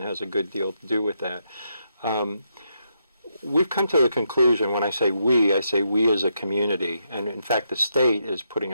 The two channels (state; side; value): inverted; both; correlation -0.80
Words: has a good deal to do with that, we've come to the conclusion, when I say we as a community, and in fact the state is putting